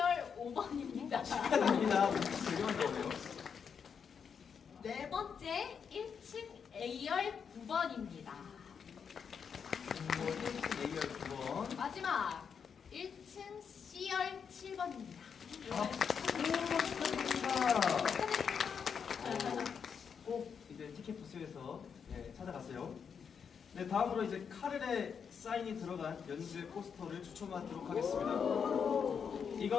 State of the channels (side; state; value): right; quieter; 6.7 dB